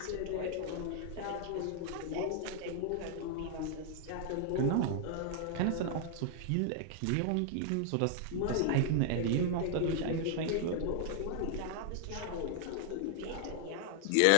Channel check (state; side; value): different; both; correlation -0.01